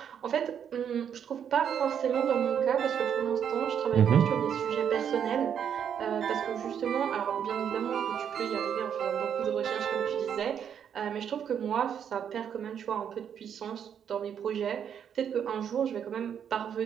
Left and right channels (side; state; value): left; quieter; 8.4 dB